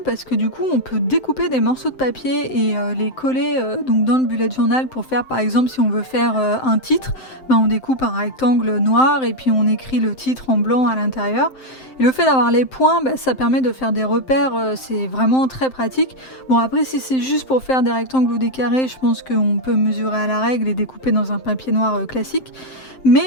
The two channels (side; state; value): right; late; 7.7 ms